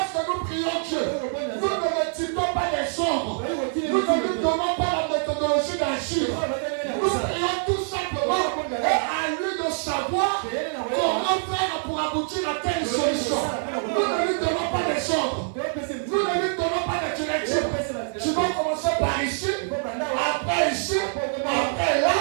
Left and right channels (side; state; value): left; silent; 59 dB below the other